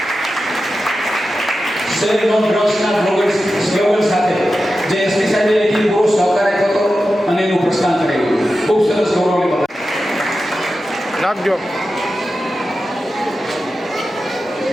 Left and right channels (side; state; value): both; normal; correlation 0.92